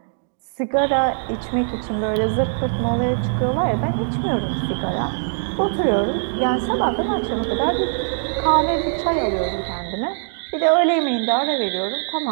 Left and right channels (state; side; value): silent; left; digital silence